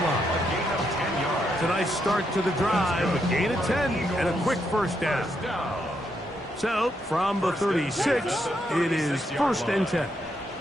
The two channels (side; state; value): both; normal; correlation 0.79